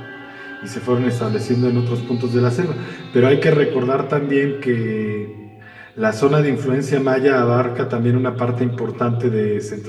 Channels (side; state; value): both; identical; correlation 1.00